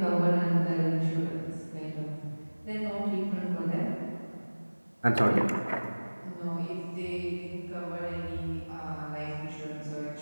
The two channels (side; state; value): both; inverted; correlation -1.00